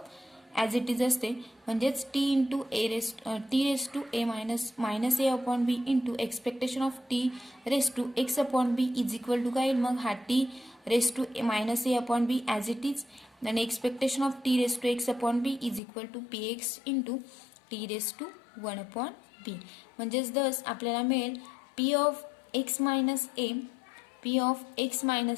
as it is असते म्हणजेच t into T raise to a minus A upon B into expectation of T raise to x upon b is equal to काय येईल मग हा t raise to minus A upon b as it is आणि expectation of T raise to x upon b is equal to p x into T raise to 1 upon b म्हणजेच thus आपल्याला मिळेल p of x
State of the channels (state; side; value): drops out; right; at 15.8 s